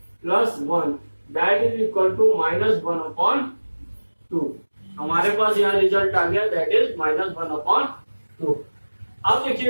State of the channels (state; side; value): inverted; both; correlation -1.00